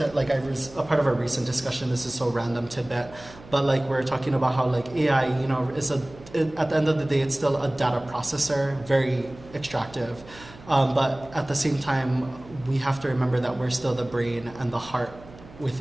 like I was a part of a recent discussion, this is so random, Tibet, but like we're talking about how like AI, is at the end of the day, it's still a data processor, very extractive. But at the same time, we have to remember that we're still the brain and the heart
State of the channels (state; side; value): noise; right; hum, 20 dB below the sound